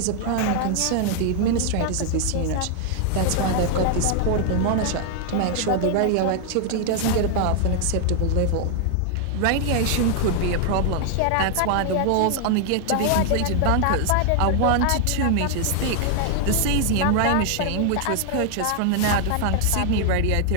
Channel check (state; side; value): different; both; correlation 0.00